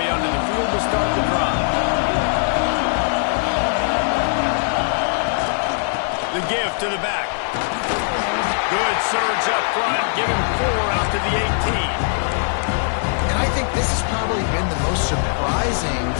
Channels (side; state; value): right; silent; 60 dB below the other